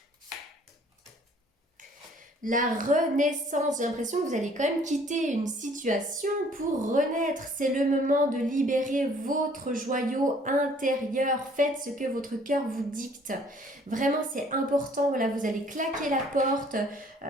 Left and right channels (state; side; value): normal; both; correlation 0.58